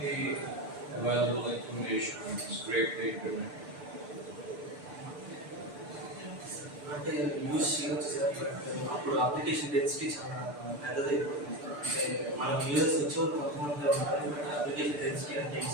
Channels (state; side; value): late; left; 6.8 ms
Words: available information to scrape the internet? అంటే use చేయవచ్చు sir. But అప్పుడు application density చాలా పెద్దదైపోతుంది. అంటే మనకు users వచ్చేవాళ్ళు కొంతమంది ఉంటారు. But application density అంటే